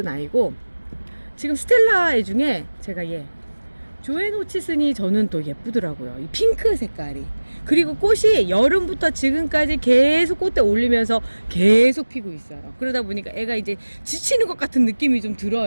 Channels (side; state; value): both; inverted; correlation -1.00